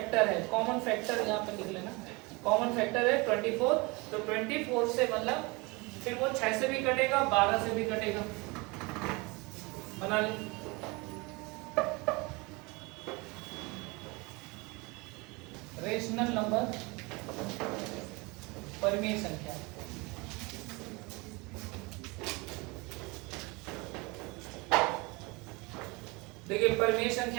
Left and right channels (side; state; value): left; quieter; 26.2 dB